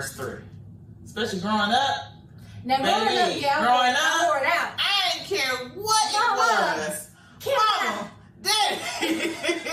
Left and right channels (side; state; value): both; identical; correlation 1.00